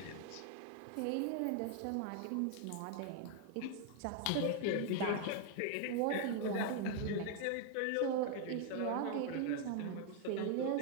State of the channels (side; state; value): both; different; correlation 0.00